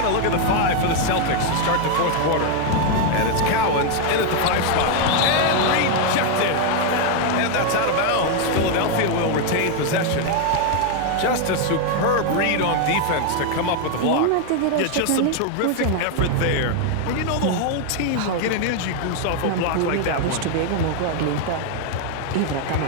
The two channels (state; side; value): different; both; correlation 0.01